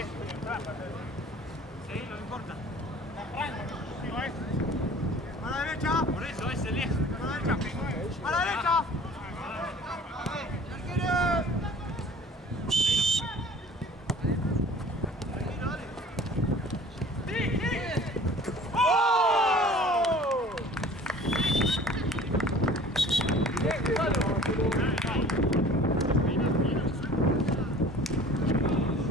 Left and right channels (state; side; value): normal; both; correlation 0.46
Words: Sí, no me importa. A la derecha. Por eso es el 10. A la derecha. A la derecha.